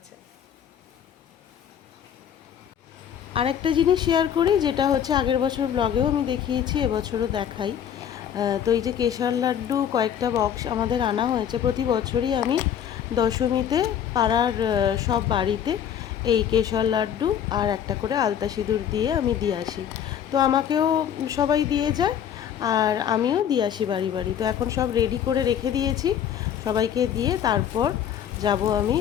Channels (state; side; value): quieter; right; 9.2 dB